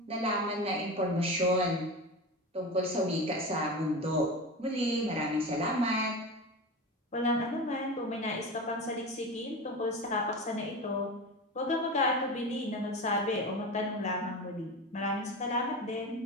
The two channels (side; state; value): both; normal; correlation 0.26